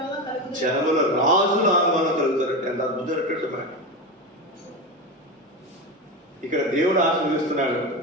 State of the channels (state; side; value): normal; both; correlation 0.19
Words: జనముల రాజులు ఆమె వల్ల కలుగుతారు. ఎంత అద్భుతమైనటువంటి మాట. ఇక్కడ దేవుడు ఆశీర్వదిస్తున్నాడు.